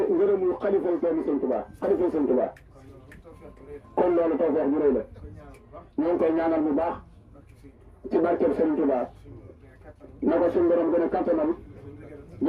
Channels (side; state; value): both; identical; correlation 1.00